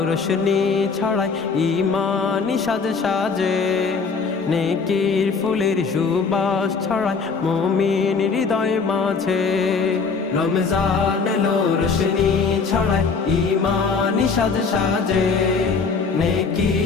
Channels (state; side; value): quieter; right; 5.0 dB